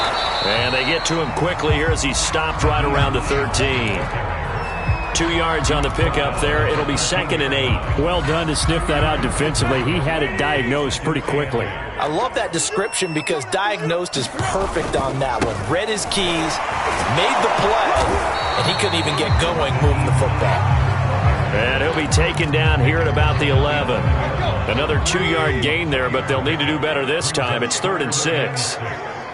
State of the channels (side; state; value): both; identical; correlation 1.00